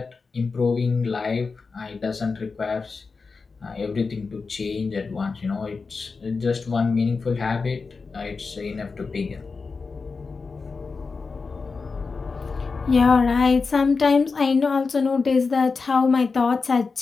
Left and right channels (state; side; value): quieter; right; 4.5 dB